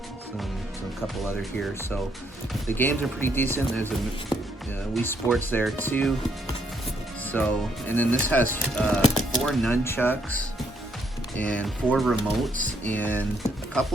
so a couple other here. So the games are pretty decent. There's a Wii Sports there too. So, and then this has 4 nunchucks and 4 remotes, and a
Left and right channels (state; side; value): normal; both; correlation 0.71